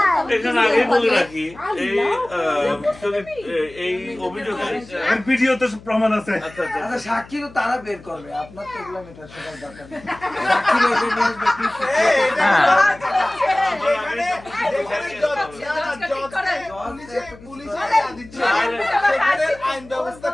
এখানে আগে বলে রাখি এই অভিযোগে আর ভিডিওতে প্রমাণ আছে। আচ্ছা আচ্ছা আচ্ছা সাক্ষী তো তারা বের করবে, আপনার তো এগুলো মেটার সবার দরকার নেই। সাক্ষী বের করে নিয়ে আসবে, please। যেখানে পুলিশে দিচ্ছে, সেখানে আইন ব্যবস্থা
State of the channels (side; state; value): left; noise; hum, 21 dB below the sound